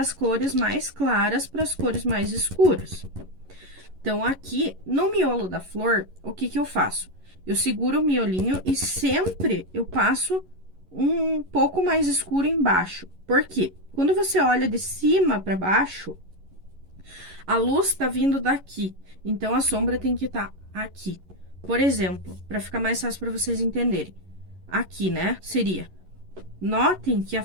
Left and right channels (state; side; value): late; left; 11 ms